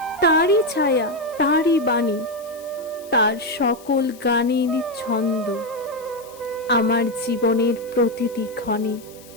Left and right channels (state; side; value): noise; left; hiss, 22 dB below the sound